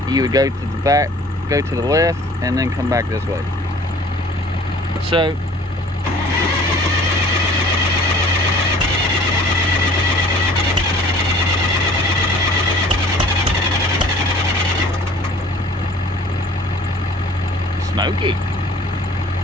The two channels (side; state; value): both; normal; correlation 0.50